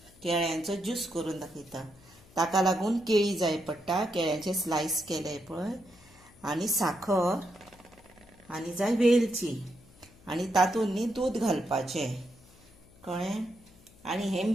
केळ्यांचो ज्यूस करून दाखयता। ताका लागून केळी जाय पडटा, केळ्यांचे स्लायस केले पळय आनी साखर आनी जाय वेलची आनी तातूंत न्ही दूद घालपाचें, कळ्ळें। आनी हें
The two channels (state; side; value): noise; left; hum, 26 dB below the sound